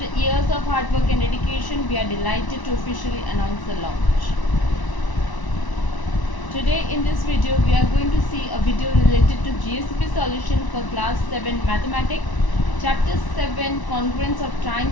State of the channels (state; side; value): late; right; 1.0 ms